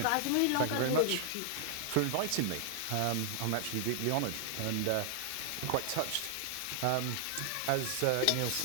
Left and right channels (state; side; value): different; both; correlation 0.00